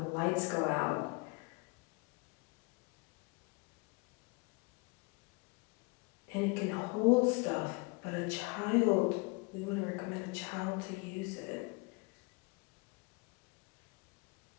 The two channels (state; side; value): quieter; right; 28.9 dB